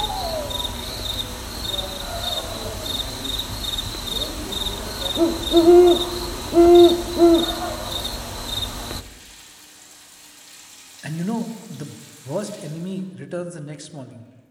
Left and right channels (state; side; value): identical; both; correlation 1.00